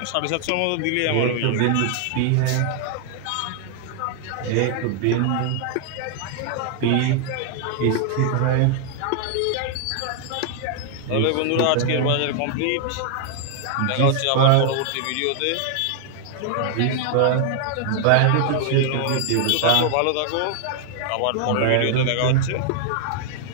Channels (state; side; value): different; both; correlation 0.00